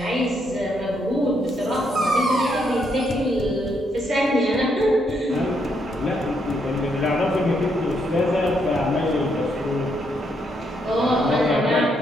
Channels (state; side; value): normal; both; correlation 0.76